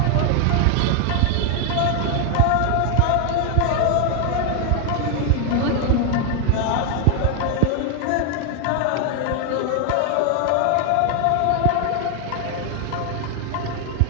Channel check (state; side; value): different; both; correlation 0.00